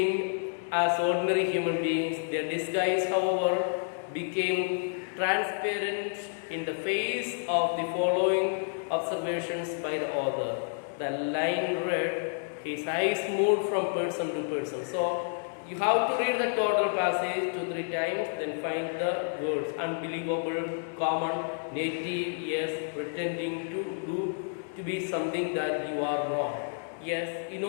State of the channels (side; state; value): right; silent; digital silence